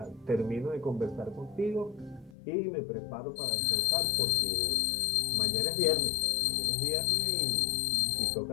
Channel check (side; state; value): right; drops out; at 2.4 s